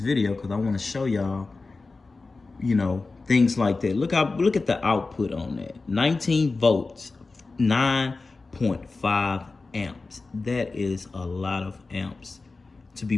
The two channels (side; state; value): right; quieter; 3.8 dB